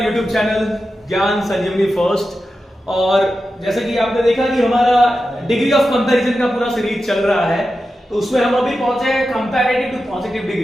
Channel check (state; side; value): normal; both; correlation 0.91